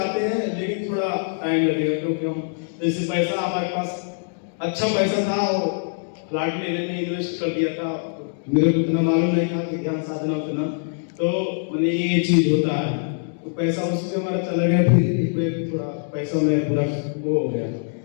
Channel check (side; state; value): right; silent; digital silence